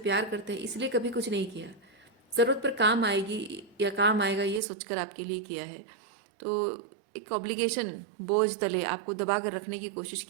करते हैं, इसलिए कभी कुछ नहीं किया। ज़रूरत पर काम आएगी या काम आएगा ये सोचकर आपके लिए किया है। तो एक ऑब्लिगेशन बोझ तले आपको दबा कर रखने की कोशिश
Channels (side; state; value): left; drops out; at 4.6 s